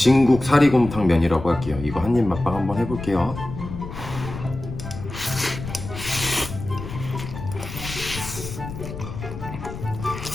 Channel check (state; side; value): noise; left; rumble, 10 dB below the sound